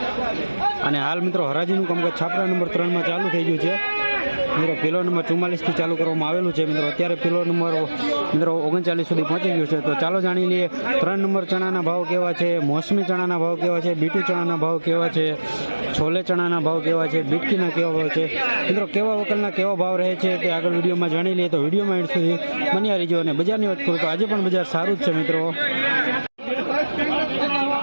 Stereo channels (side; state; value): both; inverted; correlation -1.00